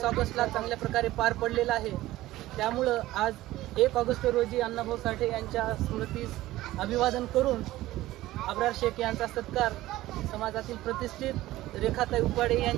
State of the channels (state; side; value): quieter; left; 16.3 dB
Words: ऑगस्टला चांगल्या प्रकारे पार पडलेला आहे। त्यामुळं आज 1 ऑगस्ट रोजी अण्णाभाऊ साठे यांच्या स्मृतीस अभिवादन करून अब्रार शेख यांचा सत्कार समाजातील प्रतिष्ठित रेखाताई उपाडे